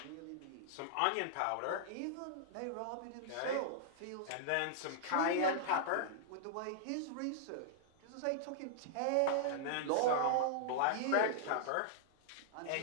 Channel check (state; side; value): different; both; correlation -0.01